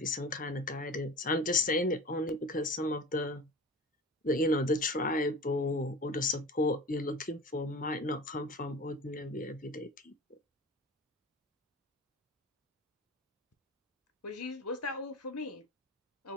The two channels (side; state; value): both; normal; correlation 0.36